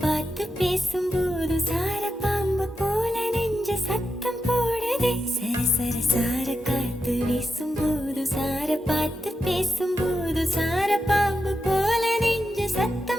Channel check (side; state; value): both; normal; correlation 0.88